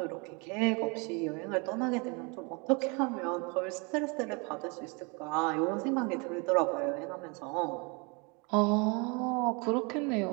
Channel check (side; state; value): left; quieter; 31.0 dB